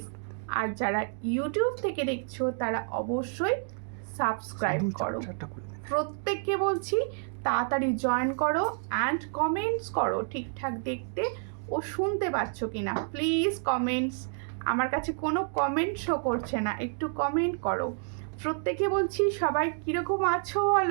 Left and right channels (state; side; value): silent; left; 58 dB below the other